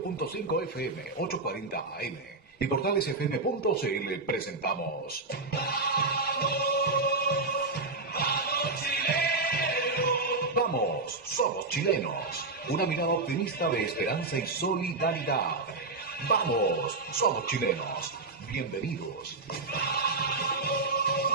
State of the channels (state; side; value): quieter; left; 3.5 dB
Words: FM, 840 AM y portalesfm.cl presentamos Vamos, somos chilenos. Una mirada optimista de esperanza y solidaridad. Vamos, somos chilenos. Bienvenidos.